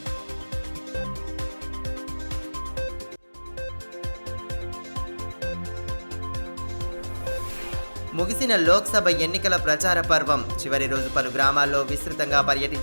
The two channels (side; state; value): both; inverted; correlation -1.00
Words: ముగిసిన లోక్సభ ఎన్నికల ప్రచార పర్వం చివరి రోజు పలు గ్రామాల్లో విస్తృతంగా